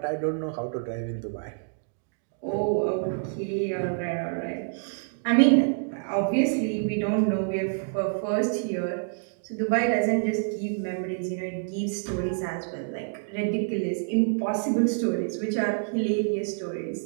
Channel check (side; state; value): left; silent; digital silence